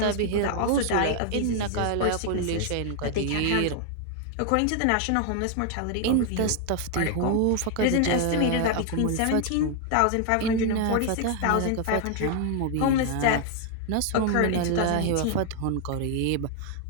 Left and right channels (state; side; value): different; both; correlation 0.00